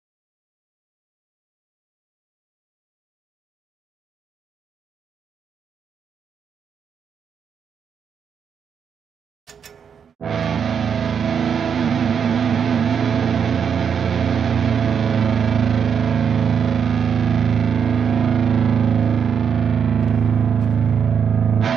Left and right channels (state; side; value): quieter; left; 7.2 dB